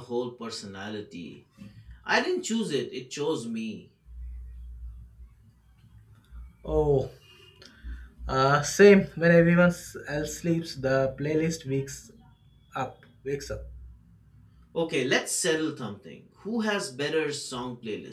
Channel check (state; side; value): identical; both; correlation 1.00